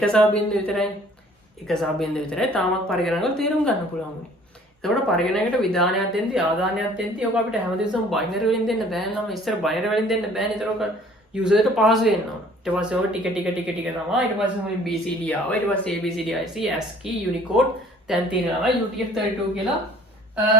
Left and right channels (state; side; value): normal; both; correlation 0.53